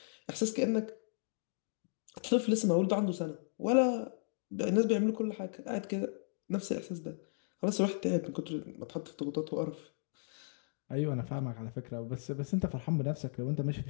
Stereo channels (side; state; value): right; silent; digital silence